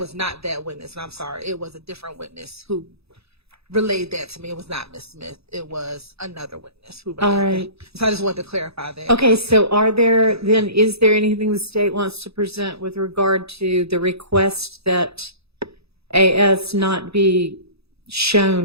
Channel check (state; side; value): late; left; 0.78 ms